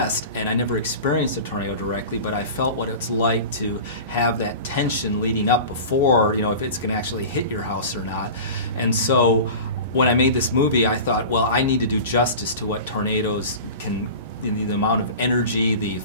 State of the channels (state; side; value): inverted; both; correlation -0.34